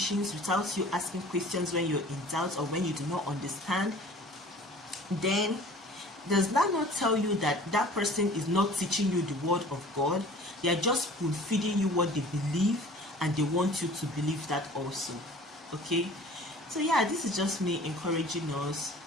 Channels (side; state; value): both; normal; correlation 0.46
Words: without you asking questions when you're in doubt or when you do not understand, then does that not tell you that that person is not teaching you the word of God? They are just spoon feeding you what they believe, and they want you to believe that also. Okay? So yeah, this is just me encouraging us.